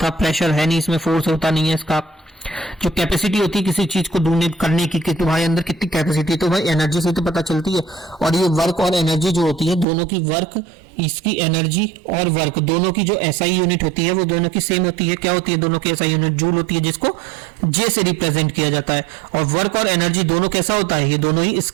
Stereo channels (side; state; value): left; drops out; at 9.9 s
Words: था, प्रेशर है नहीं इसमें, फोर्स होता नहीं है इसका। जो कैपेसिटी होती है किसी चीज को डोनेट करने की कि तुम्हारे अंदर कितनी कैपेसिटी, तो भाई एनर्जी से तो पता चलती है। और ये वर्क और एनर्जी जो होती है दोनों की, वर्क इसकी एनर्जी और वर्क दोनों की जो SI यूनिट होती है वो दोनों की सेम होती है। क्या होती है दोनों की SI यूनिट, जूल होती है, जिसको J से रिप्रेजेंट किया जाता है। और वर्क और एनर्जी दोनों कैसा होता है, ये दोनों ही